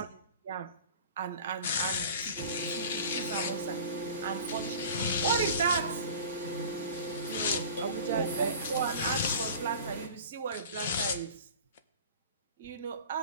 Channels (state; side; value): inverted; both; correlation -0.40